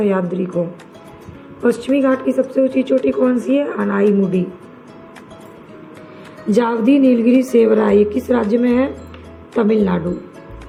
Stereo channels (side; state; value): both; identical; correlation 1.00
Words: को। पश्चिमी घाट की सबसे ऊंची चोटी कौन सी है? अनाईमुडी। जावदी, नीलगिरी, सेवराय ये किस राज्य में है? तमिलनाडु।